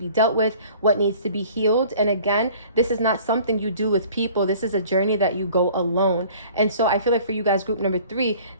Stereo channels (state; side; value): inverted; both; correlation -0.50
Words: dealt with, what needs to be healed. And again, this is not something you do with people. This is a journey that you go alone. And so I feel like for you guys, group number 3,